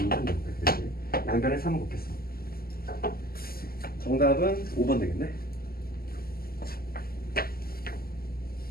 되지. 양변에 3을 곱했어. 정답은 5번 되겠네.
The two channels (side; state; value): right; late; 0.43 ms